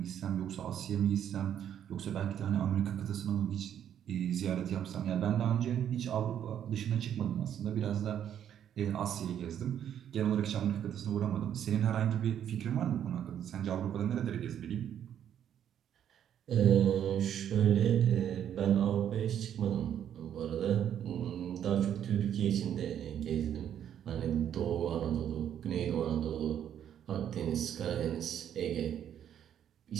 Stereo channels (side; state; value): left; quieter; 9.7 dB